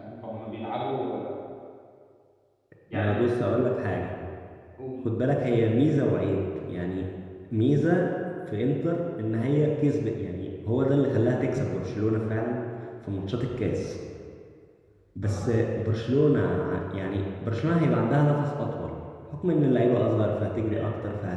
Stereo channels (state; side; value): identical; both; correlation 1.00